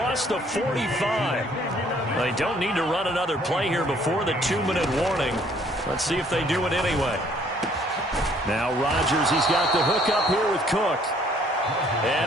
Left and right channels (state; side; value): normal; both; correlation 0.61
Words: the 45. They don't need to run another play here before the 2-minute warning. Let's see if they do it anyway. Now Rodgers, he's got the hook up here with Cook.